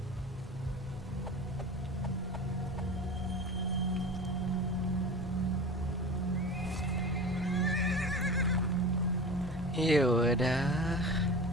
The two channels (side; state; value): both; normal; correlation 0.34